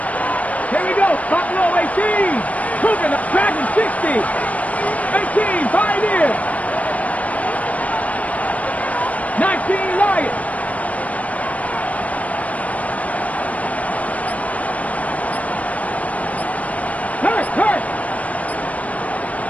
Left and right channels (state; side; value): late; right; 0.069 ms